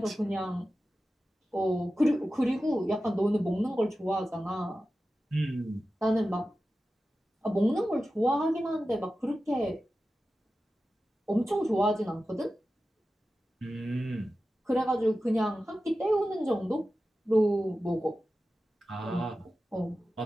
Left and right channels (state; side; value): normal; both; correlation 0.94